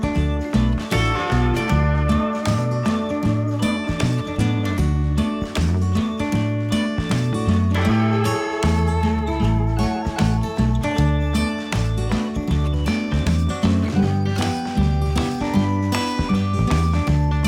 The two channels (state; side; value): identical; both; correlation 1.00